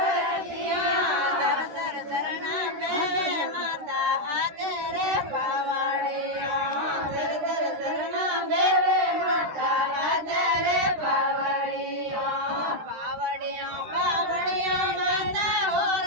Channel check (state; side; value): late; left; 13 ms